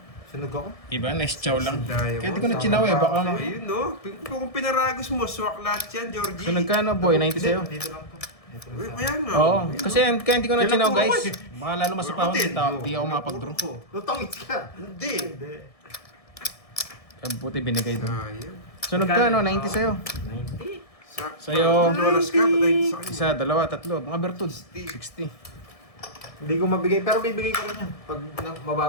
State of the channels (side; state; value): right; late; 1.6 ms